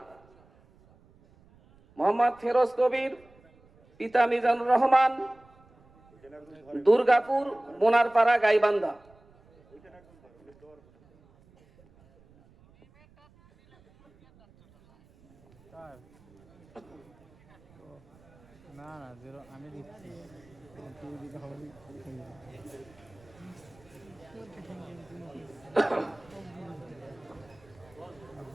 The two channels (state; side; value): noise; right; rumble, 28 dB below the sound